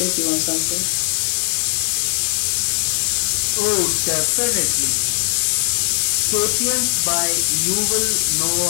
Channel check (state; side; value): silent; right; digital silence